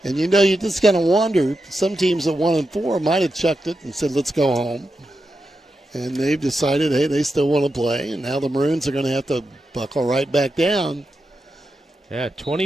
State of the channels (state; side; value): normal; both; correlation 0.88